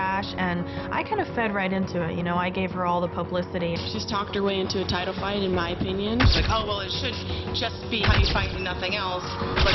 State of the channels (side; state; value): both; identical; correlation 1.00